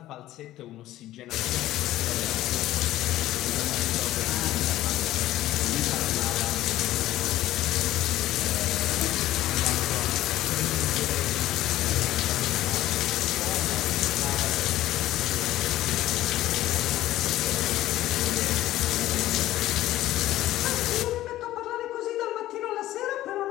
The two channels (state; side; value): quieter; right; 14.8 dB